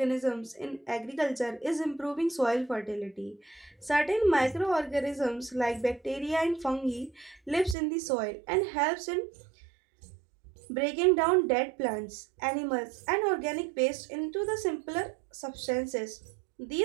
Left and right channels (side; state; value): left; drops out; at 7.8 s